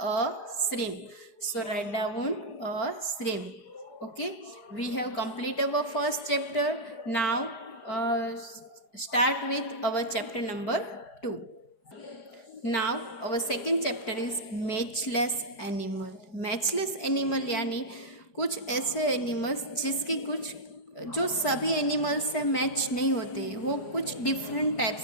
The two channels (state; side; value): late; right; 4.9 ms